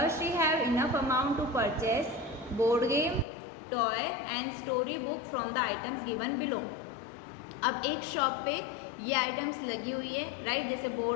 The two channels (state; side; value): drops out; right; at 3.2 s